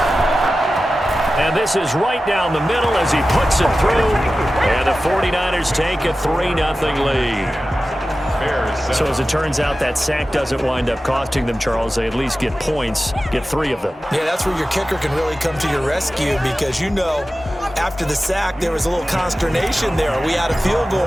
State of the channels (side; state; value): both; normal; correlation 0.95